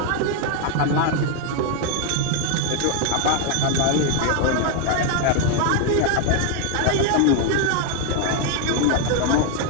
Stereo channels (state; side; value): different; both; correlation 0.00